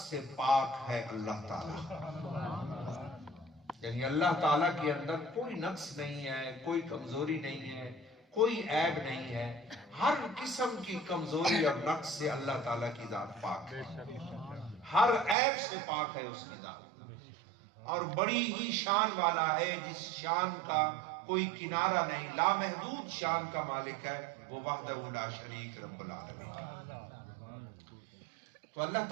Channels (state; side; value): drops out; left; at 15.4 s